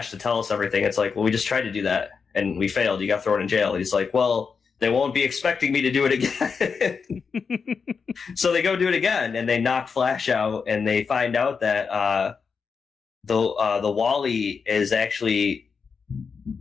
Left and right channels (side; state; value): right; quieter; 5.6 dB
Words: to tell us everything. It's like, well, we just tried to do that and we failed. You got thrown in jail. He's like, well, they won't be expecting me to do it again. So they go do it again, and they knock Flash out, and they find out that the Wally is actually